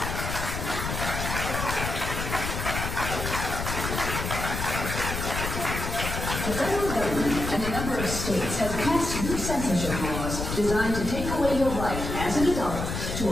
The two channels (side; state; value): left; noise; rumble, 4 dB below the sound